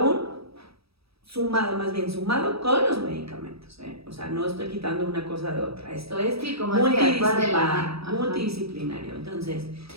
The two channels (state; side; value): late; left; 0.77 ms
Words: más bien sumado con los medicamentos, ¿eh? O sea, no estoy quitando una cosa de otra. Esto es como multidisciplinario. Entonces,